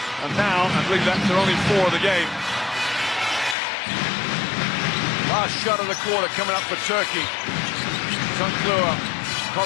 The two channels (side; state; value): right; drops out; at 3.6 s